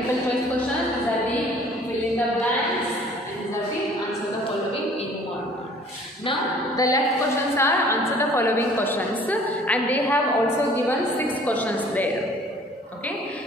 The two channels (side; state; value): both; normal; correlation 0.53